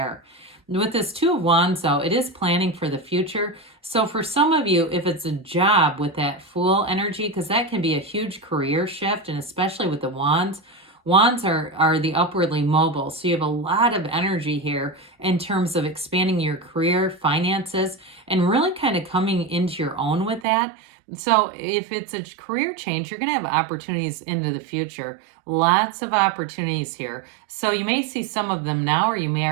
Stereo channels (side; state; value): left; drops out; at 20.5 s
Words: With this Two of Wands, though, it is planning for the future. So for some of you, if it's a job with that Fool energy, because that can be a huge career shift, and especially with the Wands, Wands are the upwardly mobile. So you have a lot of energy here in terms of expanding your career, finances, and really kind of coming into your own with that. So if it's a career change, you're going to have opportunities into the future. Lots of opportunities here. So you may see some of them now, or you may